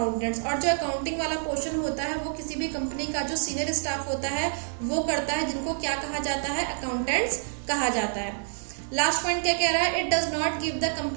और जो अकाउंटिंग वाला पोर्शन होता है वो किसी भी कंपनी का जो सीनियर स्टाफ होता है वो करता है, जिनको क्या कहा जाता है, अकाउंटेंट्स कहा जाता है। लास्ट पॉइंट क्या कह रहा है it does not give the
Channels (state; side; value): silent; left; digital silence